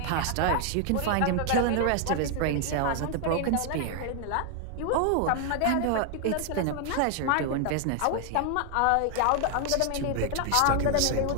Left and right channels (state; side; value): different; both; correlation 0.00